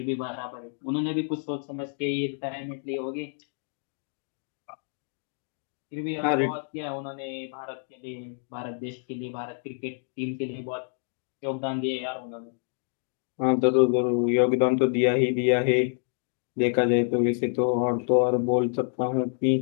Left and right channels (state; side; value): silent; right; digital silence